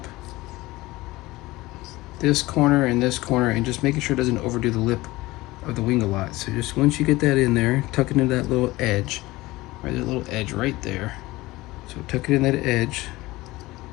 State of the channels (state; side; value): quieter; right; 19.5 dB